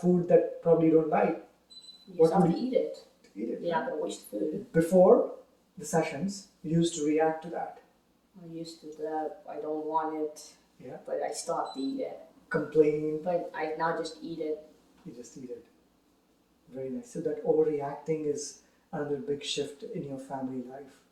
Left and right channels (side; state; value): both; identical; correlation 1.00